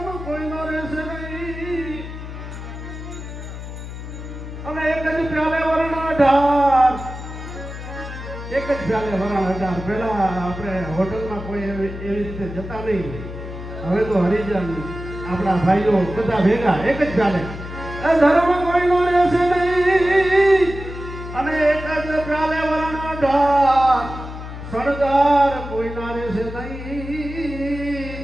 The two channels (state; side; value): noise; left; hum, 10 dB below the sound